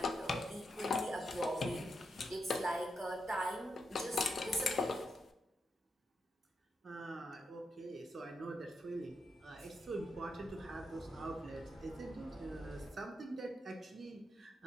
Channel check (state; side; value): normal; both; correlation 0.84